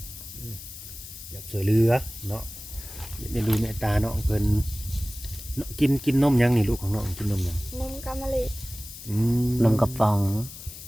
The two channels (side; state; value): left; noise; hiss, 13 dB below the sound